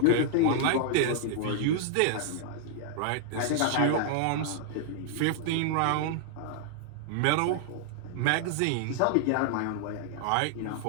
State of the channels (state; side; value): different; both; correlation -0.01